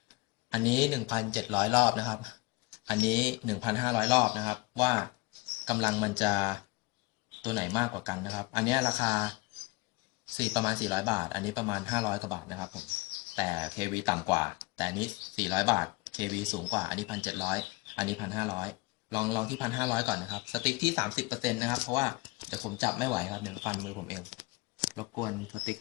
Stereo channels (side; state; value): right; quieter; 23.9 dB